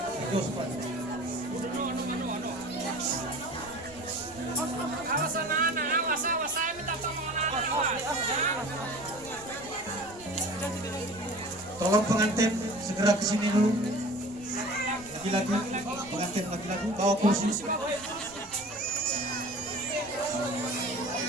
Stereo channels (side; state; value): right; noise; rumble, 23 dB below the sound